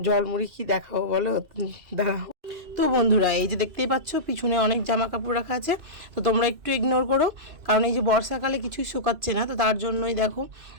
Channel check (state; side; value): late; left; 2.6 ms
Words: জলমুড়ি কি দেখাবো বলো, দাঁড়াও। তো বন্ধুরা, এই যে দেখতেই পাচ্ছ পিছনে অনেক জামা কাপড় রাখা আছে, তো তোমরা একটু ইগনোর করো, কারণ এই যে বর্ষাকালে কিছুই শুকাচ্ছে না, তো তার জন্যই দেখো